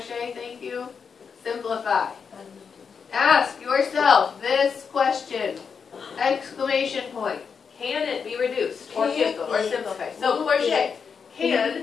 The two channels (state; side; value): quieter; right; 6.1 dB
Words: thank you. Simplify. Ask yourself this question. Exclamation point. Can it be reduced or canceled or simplified? So, Portia,